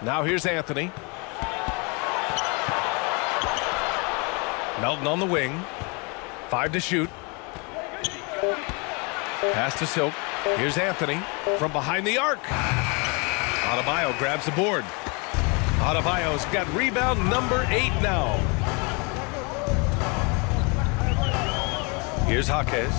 Now here's Anthony. Melton on the wing. 5 to shoot. Pass to Silk. Here's Anthony from behind the arc. Adebayo grabs the board. Adebayo's got rebound number 8 now. Here's Jaquez.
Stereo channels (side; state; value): right; quieter; 31.4 dB